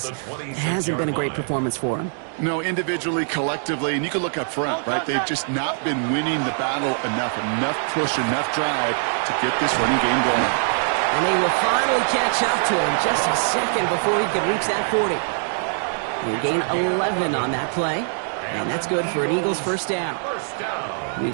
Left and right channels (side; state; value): left; silent; digital silence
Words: it hasn't been a great performance for him. No, individually, collectively, and you can look up front, right? They've just not been winning the battle enough push, enough drive to get this running game going. And they will finally catch up to him just a second before he could reach that 40. They gain 11 on that play, and that's good for an Eagles 1st down.